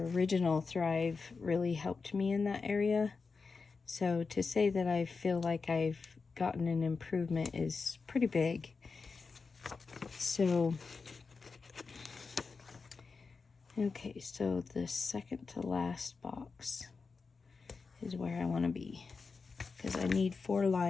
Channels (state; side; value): quieter; right; 4.7 dB